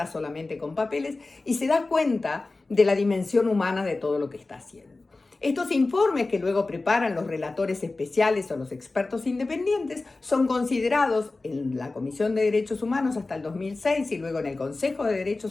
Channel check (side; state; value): right; quieter; 3.4 dB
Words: solamente con papeles y se da cuenta de la dimensión humana de todo lo que está haciendo. Estos informes que luego preparan los relatores especiales o los expertos independientes son considerados en la Comisión de Derechos Humanos hasta el 2006 y luego en el Consejo de